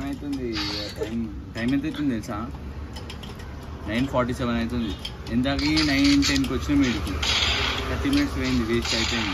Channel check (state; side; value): identical; both; correlation 1.00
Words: అవుతుంది. టైం ఎంత అవుతుంది తెలుసా? 9:47 అవుతుంది. ఎంతకి 9:10కి వచ్చిన వీడికి 30 మినిట్స్ పోయింది, వేస్ట్